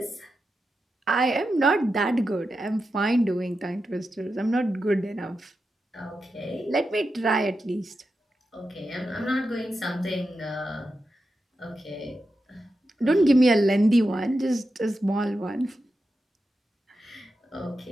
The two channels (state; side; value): normal; both; correlation 0.89